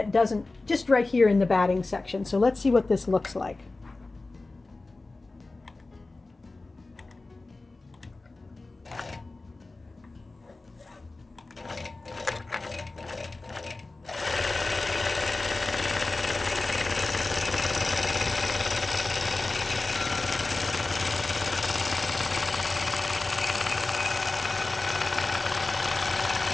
doesn't, just right here in the batting section. So let's see what this looks like.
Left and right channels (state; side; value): quieter; right; 3.3 dB